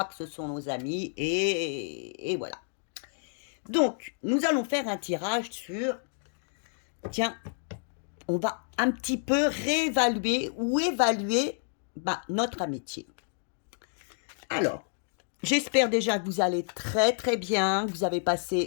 que ce sont nos amis et voilà. Donc, nous allons faire un tirage sur, tiens, on va un petit peu réévaluer ou évaluer notre amitié. Alors, j'espère déjà que vous allez très très bien, que vous avez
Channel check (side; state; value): right; silent; digital silence